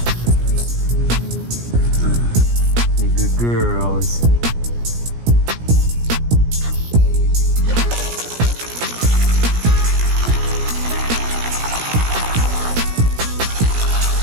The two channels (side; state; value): left; late; 17 ms